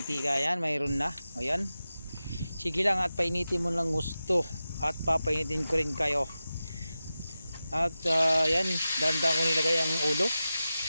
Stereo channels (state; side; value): inverted; both; correlation -0.93